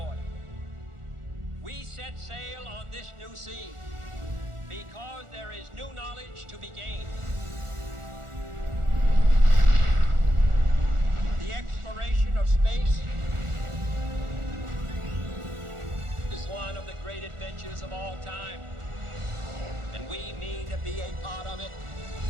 We set sail on this new sea because there is new knowledge to be gained. The exploration of space is one of the great adventures of all time, and we mean to be a part of it.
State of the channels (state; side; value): late; left; 1.4 ms